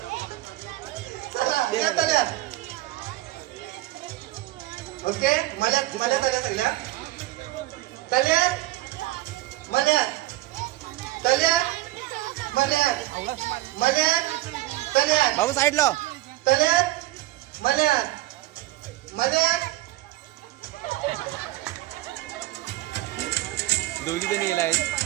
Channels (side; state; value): left; quieter; 17.0 dB